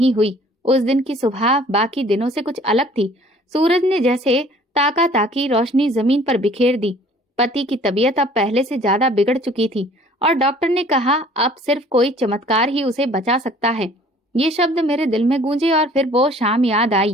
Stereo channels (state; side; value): normal; both; correlation 0.53